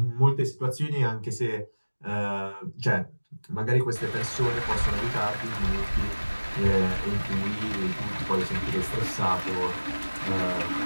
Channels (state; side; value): inverted; both; correlation -1.00